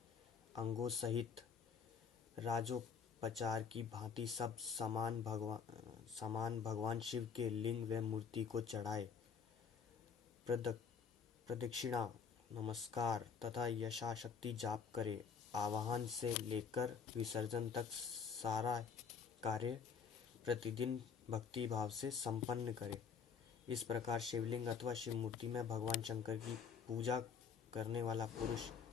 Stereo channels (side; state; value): right; quieter; 6.2 dB